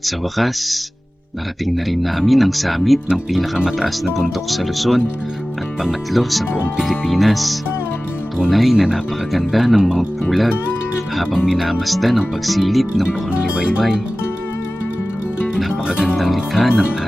Sa wakas, narating na rin namin ang summit ng pinakamataas na bundok sa Luzon at pangatlo sa buong Pilipinas. Tunay na napakaganda ng Mount Pulag habang minamasdan ang pagsilip ng bukang liwayway. Napakagandang likha ng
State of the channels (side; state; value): both; normal; correlation 0.97